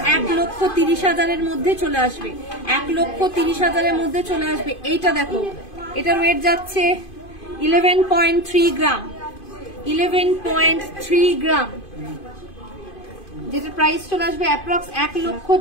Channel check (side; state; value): right; late; 2.5 ms